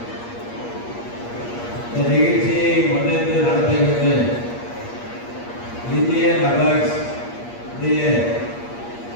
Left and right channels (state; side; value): late; right; 8.5 ms